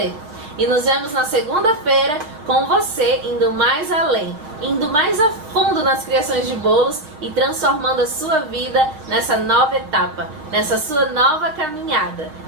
E nos vemos na segunda-feira com você indo mais além, indo mais a fundo nas criações de bolos e transformando a sua vida nessa nova etapa, nessa sua nova caminhada.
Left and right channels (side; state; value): left; late; 6.4 ms